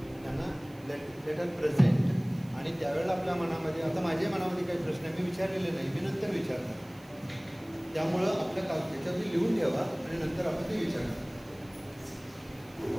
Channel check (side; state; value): right; noise; hiss, 27 dB below the sound